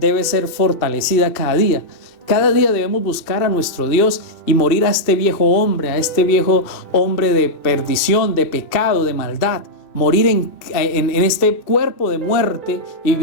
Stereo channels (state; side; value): late; right; 2.6 ms